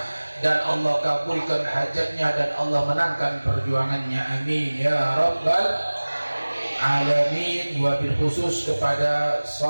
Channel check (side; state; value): both; inverted; correlation -1.00